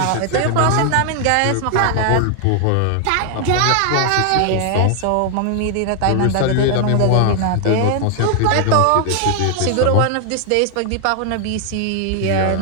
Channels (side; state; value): both; different; correlation 0.00